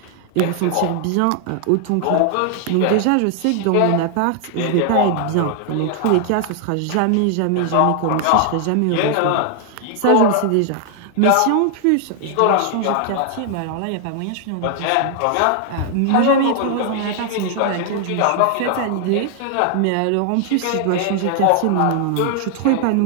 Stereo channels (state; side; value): different; both; correlation 0.00